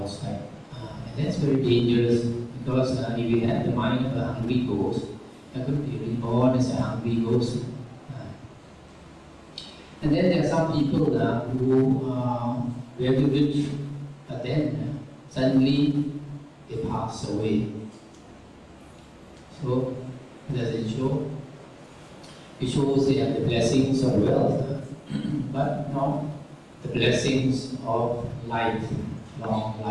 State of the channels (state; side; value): identical; both; correlation 1.00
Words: And that's very dangerous because if you have the mind of a hungry ghost, you could be reborn as a hungry ghost. And then there are some people who are very rich, but then suddenly they pass away. So, does it show? It shows they have the blessings of wealth, but not the blessings of life, long